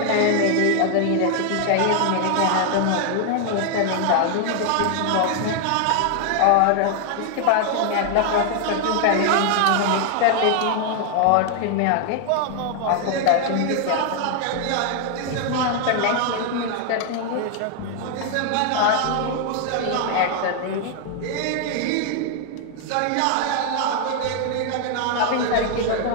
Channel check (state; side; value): different; both; correlation 0.00